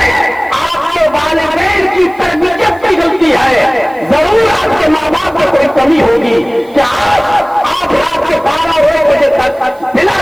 آپ کے والدین کی تربیت کی غلطی ہے. ضرور آپ کے ماں باپ کو کوئی کمی ہوگی کہ آپ رات کے 12 اور 1 بجے تک بلا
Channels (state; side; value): noise; right; hiss, 29 dB below the sound